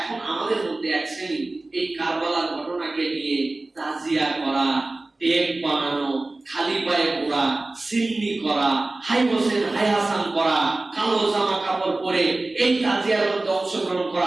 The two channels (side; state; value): left; quieter; 3.0 dB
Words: আমাদের মধ্যে এক শ্রেণী এই কারবালার ঘটনাকে নিয়ে তাজিয়া করা, টেপ বানানো, খালি পায়ে ঘোরা, সিন্নি করা, হাই হোসেন হাই হাসান করা, কালো জামা কাপড় পরে এই তাজিয়ার মধ্যে অংশগ্রহণ